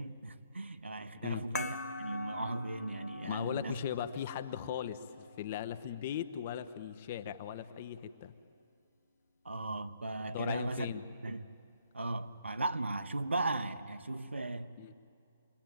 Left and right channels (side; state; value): both; inverted; correlation -0.68